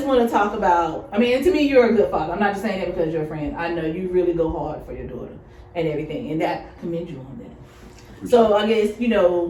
want to talk about, I mean, and to me, you're a good father. I'm not just saying that because you're a friend. I know you really go hard for your daughter and everything, and that commend you on that. So I guess,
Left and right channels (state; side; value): identical; both; correlation 1.00